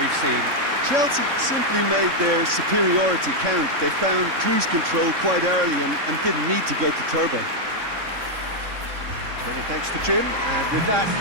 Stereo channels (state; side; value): late; left; 3.6 ms